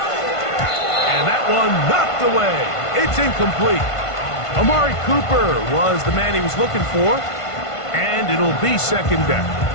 And that one knocked away. It's incomplete. Amari Cooper was the man he was looking for, and it'll be 2nd down.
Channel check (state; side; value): late; right; 1.5 ms